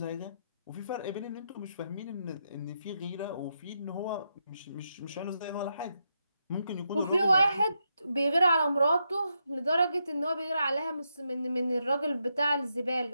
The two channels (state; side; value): inverted; both; correlation -0.83